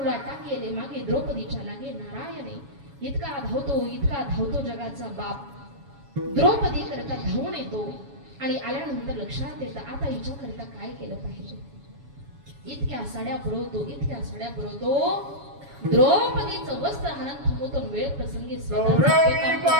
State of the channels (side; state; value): left; late; 7.2 ms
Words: गेले मागे द्रौपदीच्या लागे नारायणे. इतका धावतो जगाचा बाप. द्रौपदी करता धावून येतो आणि आल्यानंतर लक्षात येतं आता हिच्या करता काय केलं पाहिजे. इतक्या साड्या पुरवतो द्रौपदीचं वस्त्र हाणत थांबवतो. वेळ प्रसंगी गौरवी